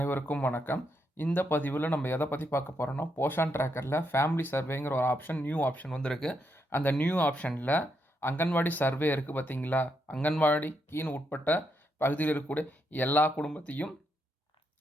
வணக்கம். இந்த பதிவில் நம்ம எதை பற்றி பார்க்க போகிறோம்னா, போஷன் ட்ராக்கரில் ஃபேமிலி சர்வேங்கிற ஒரு ஆப்ஷன், நியூ ஆப்ஷன் வந்திருக்கு. அந்த நியூ ஆப்ஷனில் அங்கன்வாடி சர்வே இருக்குது பார்த்தீங்களா, அங்கன்வாடிக்கின்னு உட்பட்ட பகுதியில் இருக்கக்கூடிய எல்லா குடும்பத்தையும்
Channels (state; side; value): normal; both; correlation 0.80